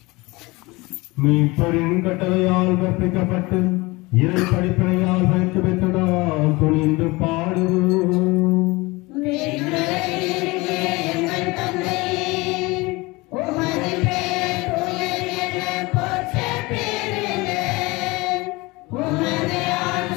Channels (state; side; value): quieter; right; 23.3 dB